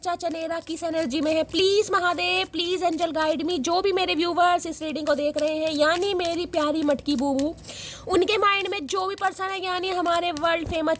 चनेरा किस एनर्जी में है। Please Mahadev, please angel guide me. जो भी मेरे व्यूवर्स इस रीडिंग को देख रहे हैं, यानी मेरी प्यारी मटकी बूबू, उनके माइंड में जो भी पर्सन है, यानी हमारे वर्ल्ड फेमस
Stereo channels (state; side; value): identical; both; correlation 1.00